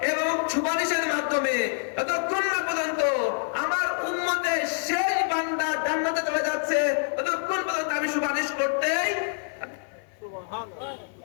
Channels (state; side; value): silent; right; 56 dB below the other